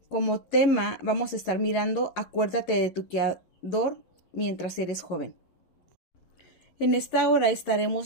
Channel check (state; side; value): late; right; 11 ms